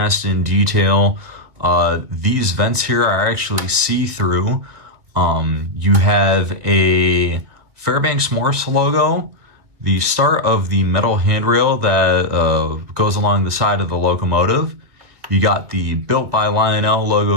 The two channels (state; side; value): late; left; 2.2 ms